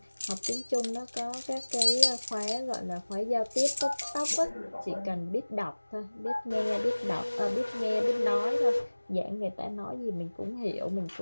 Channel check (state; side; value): inverted; both; correlation -1.00